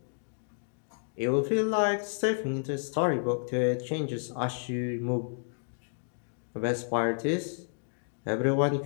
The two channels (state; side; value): silent; right; digital silence